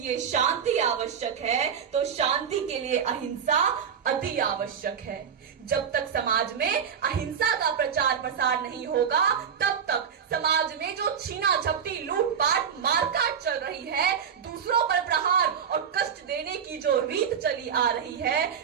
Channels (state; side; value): quieter; left; 7.4 dB